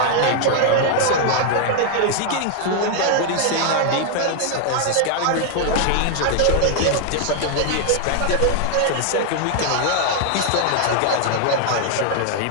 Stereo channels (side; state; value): both; different; correlation 0.00